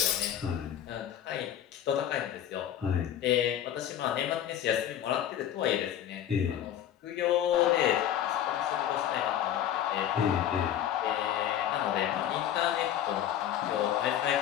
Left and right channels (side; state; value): right; quieter; 10.6 dB